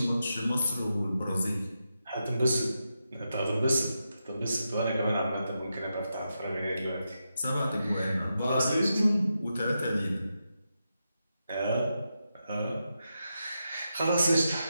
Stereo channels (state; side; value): inverted; both; correlation -0.87